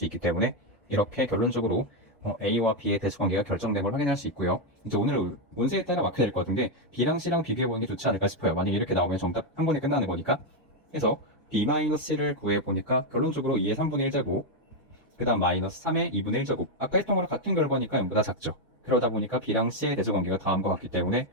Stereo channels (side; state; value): both; normal; correlation 0.03